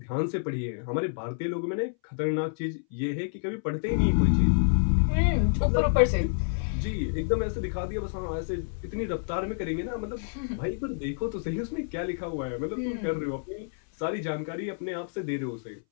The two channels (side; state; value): right; silent; 59 dB below the other